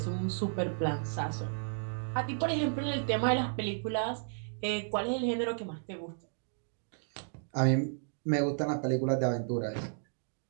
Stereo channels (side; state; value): left; silent; digital silence